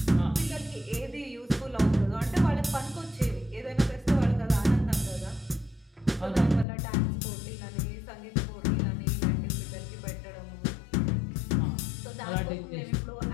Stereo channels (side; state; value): right; drops out; at 6.7 s